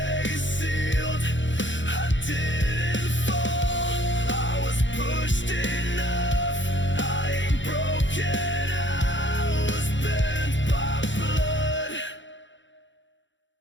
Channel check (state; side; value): late; right; 0.54 ms